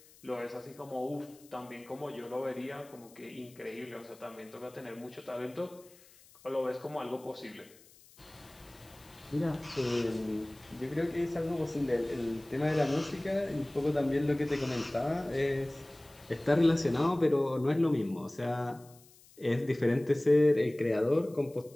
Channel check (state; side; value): noise; left; hiss, 25 dB below the sound